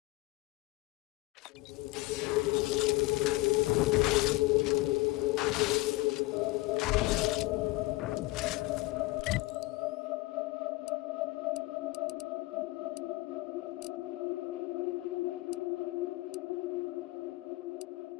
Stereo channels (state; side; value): quieter; right; 21.1 dB